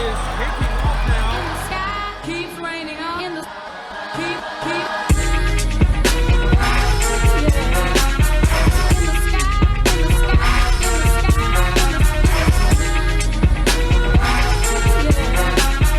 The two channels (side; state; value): both; identical; correlation 1.00